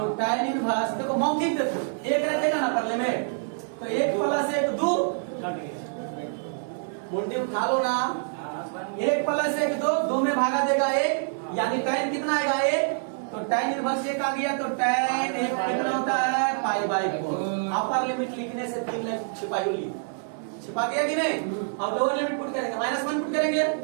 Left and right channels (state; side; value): silent; left; 61 dB below the other